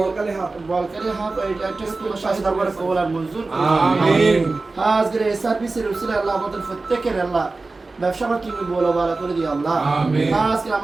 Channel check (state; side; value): quieter; left; 3.5 dB